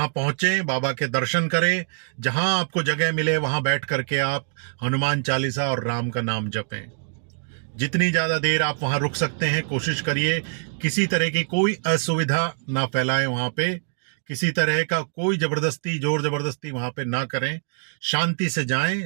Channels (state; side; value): silent; left; digital silence